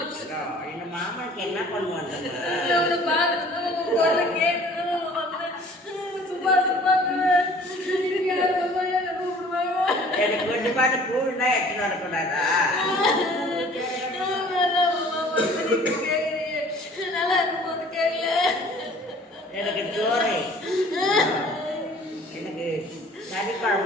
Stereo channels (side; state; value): both; normal; correlation 0.51